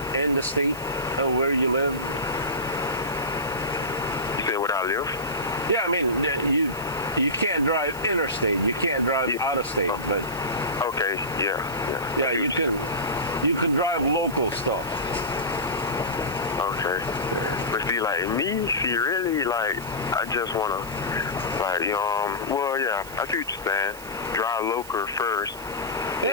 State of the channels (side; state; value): right; noise; hiss, 17 dB below the sound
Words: in the state, where you live. You say where I live? Yeah, I mean you can't drive interstate. You can't drive out of state, but okay, yeah. Yeah, you can drive local stuff. Okay. But see, like me, really, like, I just want to, like, well, yeah, I see what you're saying. Drive local first.